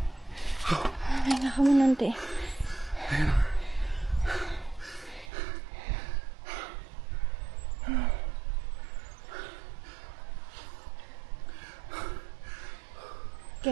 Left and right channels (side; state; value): left; drops out; at 5.3 s